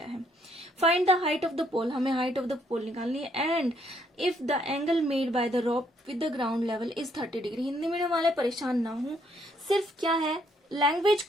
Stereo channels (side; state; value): both; normal; correlation 0.70